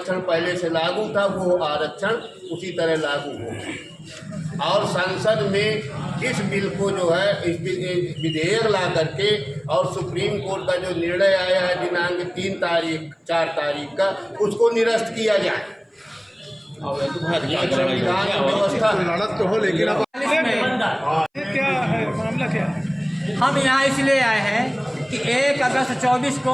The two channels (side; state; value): both; identical; correlation 1.00